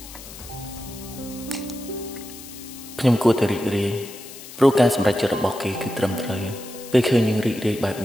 ខ្ញុំគួរតែរីករាយព្រោះការសម្រេចចិត្តរបស់គេគឺត្រឹមត្រូវពេលឃើញយើងរីករាយបែប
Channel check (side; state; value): left; noise; hiss, 15 dB below the sound